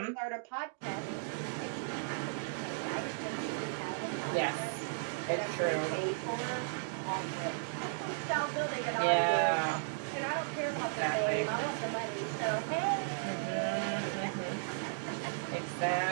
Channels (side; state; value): left; silent; digital silence